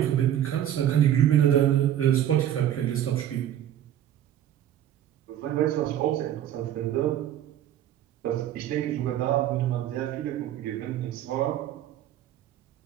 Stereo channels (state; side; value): quieter; left; 11.4 dB